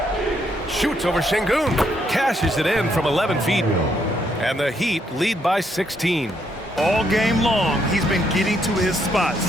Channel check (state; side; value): normal; both; correlation 0.74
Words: Shoots over Şengün. Cashes it in from 11 feet. And the Heat lead by 16. All game long, he's been getting to his